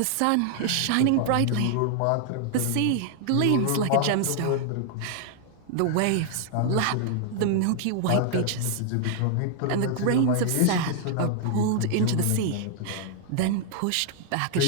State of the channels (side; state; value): both; different; correlation 0.00